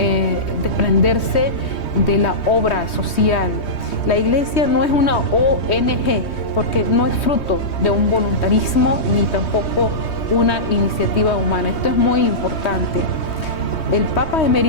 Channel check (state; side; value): late; right; 3.2 ms